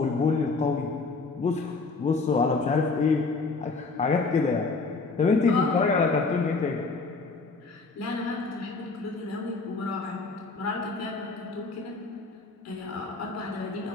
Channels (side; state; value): right; quieter; 4.0 dB